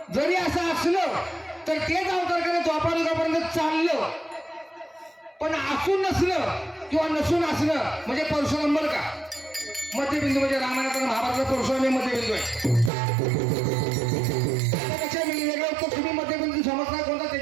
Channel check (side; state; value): left; drops out; at 12.9 s